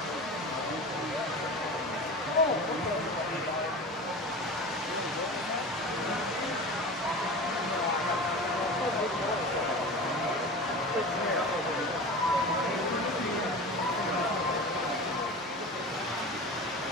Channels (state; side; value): normal; both; correlation 0.32